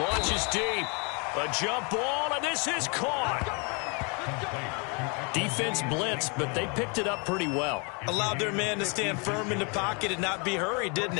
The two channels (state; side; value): quieter; right; 33.6 dB